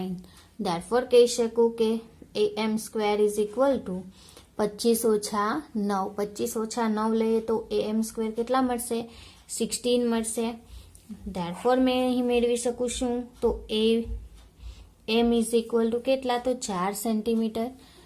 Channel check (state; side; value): identical; both; correlation 1.00